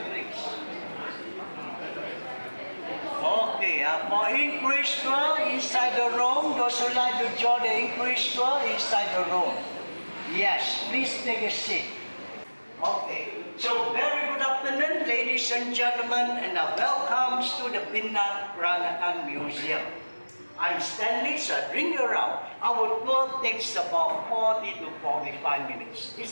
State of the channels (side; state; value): both; inverted; correlation -1.00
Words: Okay, for English tour inside the room, those who like to join the English tour inside the room. Yes, please take a seat. Okay, so very good afternoon, ladies and gentlemen, and welcome to the Pinang Peranakan Museum. I'm Stanley, so I bring you around. Our tour takes about 40 to 45 minutes.